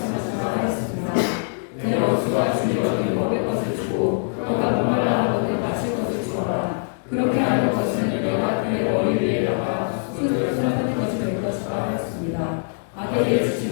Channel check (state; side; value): silent; right; digital silence